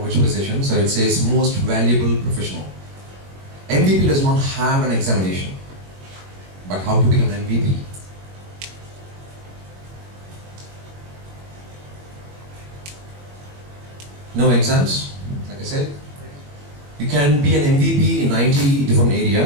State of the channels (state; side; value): late; left; 21 ms